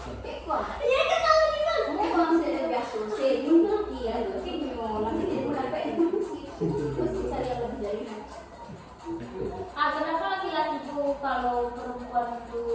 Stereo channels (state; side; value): identical; both; correlation 1.00